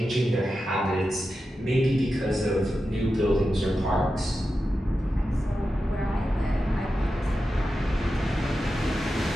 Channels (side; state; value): both; normal; correlation 0.91